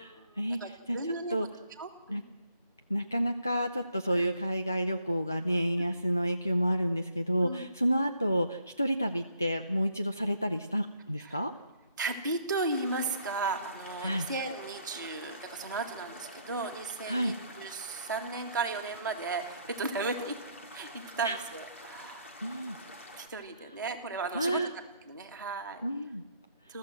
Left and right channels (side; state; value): both; inverted; correlation -0.69